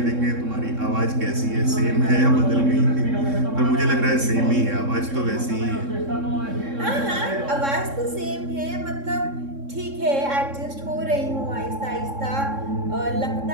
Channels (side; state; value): left; late; 3.6 ms